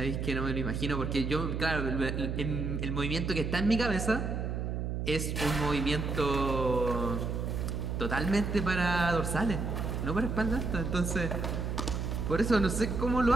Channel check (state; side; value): noise; right; hum, 2 dB below the sound